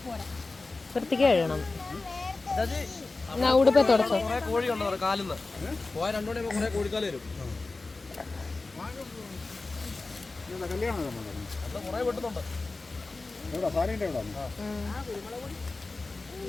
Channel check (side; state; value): right; quieter; 3.5 dB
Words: വൃത്തിക്ക് കഴിയണം. ഉടുപ്പ തുടച്ചോ.